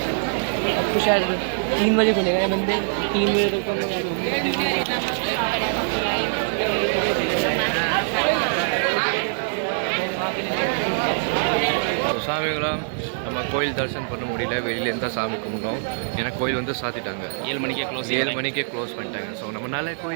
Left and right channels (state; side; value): silent; left; 60 dB below the other